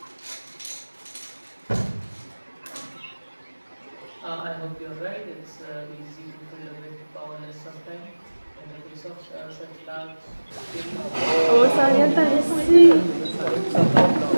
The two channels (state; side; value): inverted; both; correlation -1.00